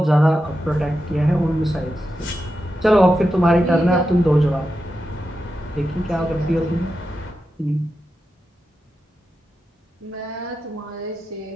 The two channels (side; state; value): both; normal; correlation 0.89